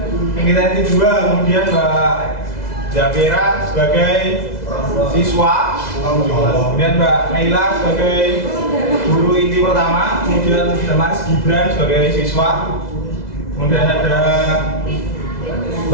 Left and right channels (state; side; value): late; right; 2.0 ms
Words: kegiatan 2, kemudian Mbak Jafira sebagai siswa, kemudian Mbak Naila sebagai guru inti pertama, kemudian Mas Gibran sebagai siswa, kemudian ada